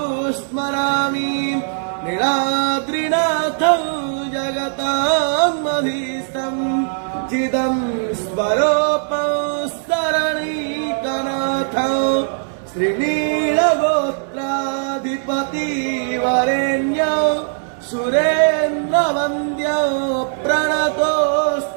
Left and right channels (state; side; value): silent; left; 64 dB below the other